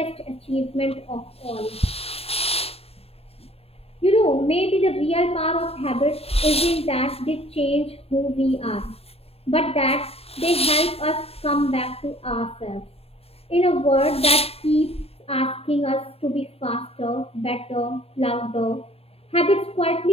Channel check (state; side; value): late; right; 0.29 ms